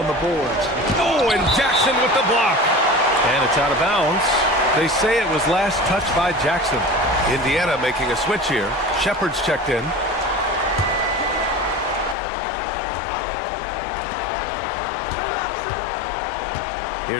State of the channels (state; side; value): drops out; right; at 12.2 s